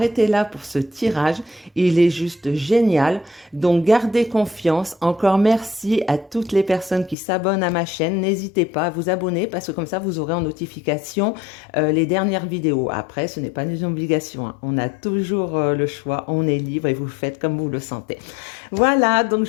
là pour ce tirage. Il est juste génial. Donc, gardez confiance. Encore merci à toutes les personnes qui s'abonnent à ma chaîne. N'hésitez pas à vous abonner parce que comme ça, vous aurez en notification les dernières vidéos. Après, ce n'est pas une obligation, hein. On a toujours le choix. On est libre et vous faites comme vous le sentez. Voilà, donc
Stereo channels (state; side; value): drops out; right; at 7.2 s